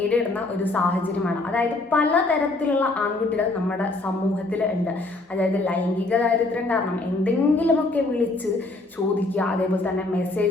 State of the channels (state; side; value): quieter; right; 3.0 dB